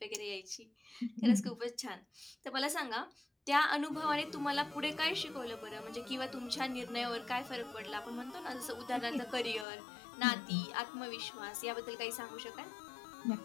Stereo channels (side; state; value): right; drops out; at 9.7 s